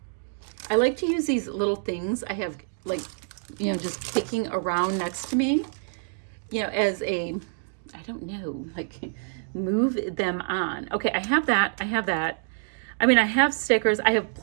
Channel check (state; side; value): silent; left; digital silence